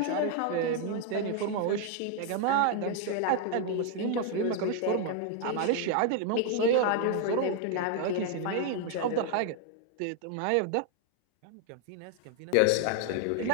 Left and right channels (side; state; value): both; different; correlation 0.00